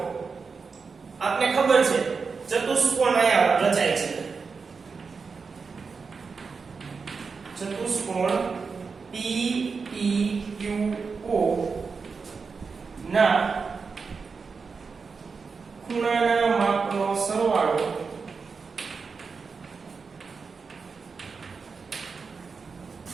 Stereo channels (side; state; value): left; quieter; 5.0 dB